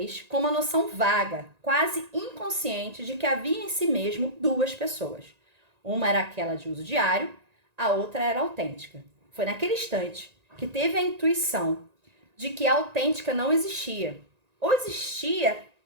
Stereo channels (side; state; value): left; late; 1.9 ms